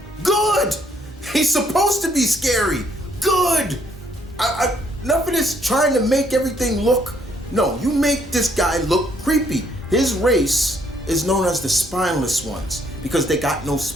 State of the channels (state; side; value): normal; both; correlation 0.68